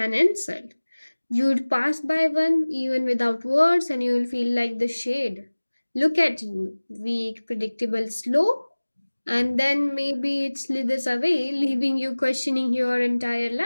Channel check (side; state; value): both; inverted; correlation -1.00